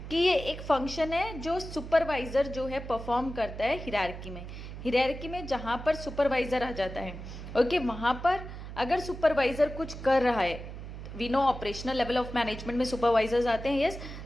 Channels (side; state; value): right; noise; hum, 10 dB below the sound